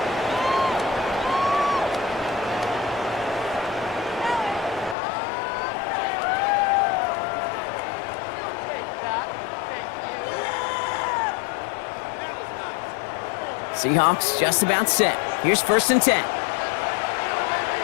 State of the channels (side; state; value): right; drops out; at 5.0 s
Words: Seahawks just about set. Here's 1st and 10.